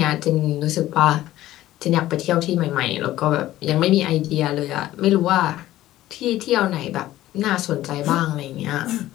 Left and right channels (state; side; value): quieter; right; 14.8 dB